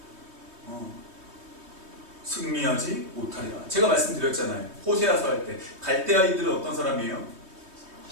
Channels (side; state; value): left; late; 3.2 ms